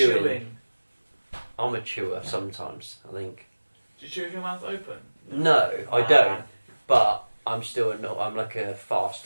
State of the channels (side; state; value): both; inverted; correlation -1.00